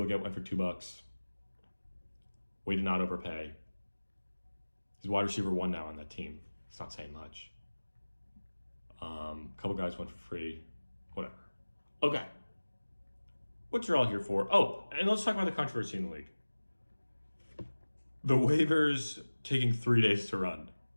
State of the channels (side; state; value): both; inverted; correlation -1.00